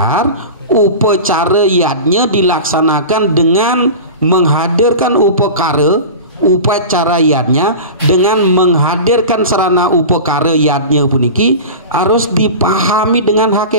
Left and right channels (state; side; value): inverted; both; correlation -0.31